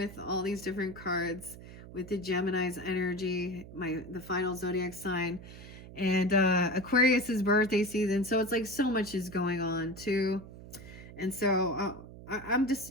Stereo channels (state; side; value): noise; right; hum, 15 dB below the sound